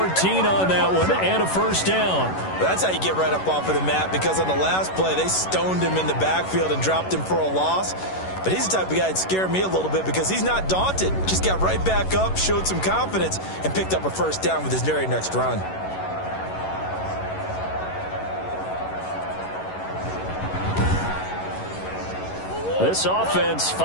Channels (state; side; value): late; right; 11 ms